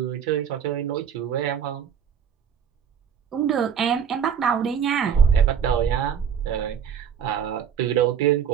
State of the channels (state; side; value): quieter; left; 7.9 dB